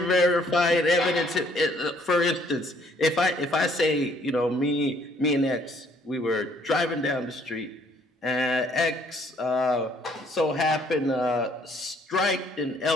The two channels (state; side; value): normal; both; correlation 0.63